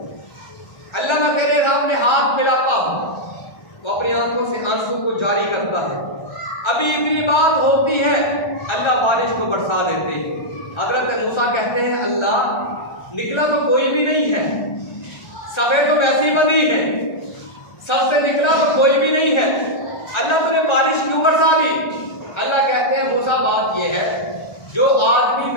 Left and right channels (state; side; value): late; right; 1.3 ms